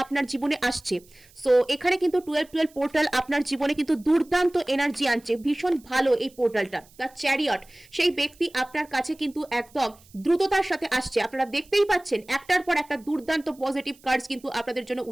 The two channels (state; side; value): noise; right; hiss, 27 dB below the sound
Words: আপনার জীবনে আসছে। সো এখানে কিন্তু 1212 পোর্টাল আপনার জীবনে কিন্তু দুর্দান্ত এনার্জি আনছে। ভীষণ ভালো এই পোর্টালটা। দ্য চ্যারিয়ট, সেই ব্যক্তি আপনার কাছে কিন্তু একদম দ্রুততার সাথে আসছে। আপনারা দেখতেই পাচ্ছেন একটার পর একটা দুর্দান্ত পজিটিভ কার্ডস কিন্তু আপনাদের জন্য